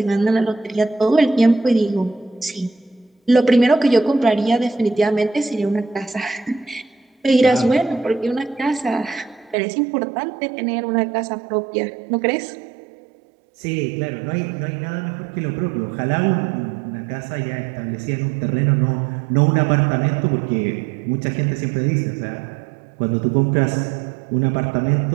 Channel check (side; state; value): left; drops out; at 9.6 s